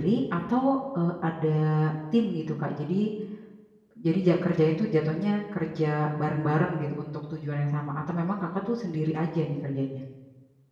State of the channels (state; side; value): identical; both; correlation 1.00